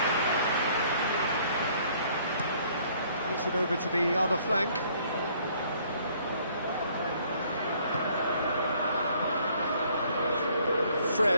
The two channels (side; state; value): both; inverted; correlation -0.61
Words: Plays it over to the other flank.